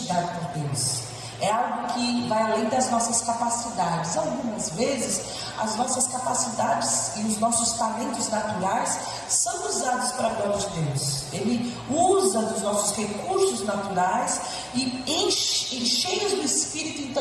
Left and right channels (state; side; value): identical; both; correlation 1.00